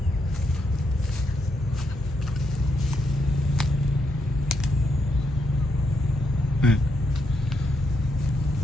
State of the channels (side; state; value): both; normal; correlation 0.79